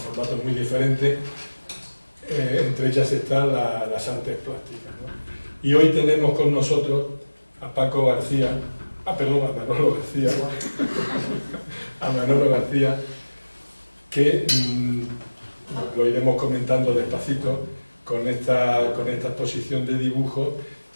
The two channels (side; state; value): both; inverted; correlation -1.00